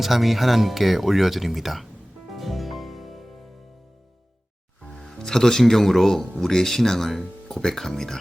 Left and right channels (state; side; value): normal; both; correlation 0.98